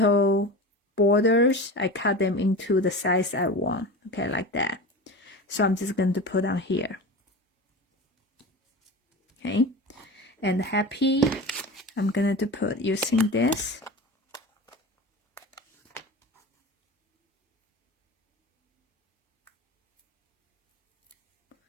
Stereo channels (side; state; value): both; normal; correlation 0.30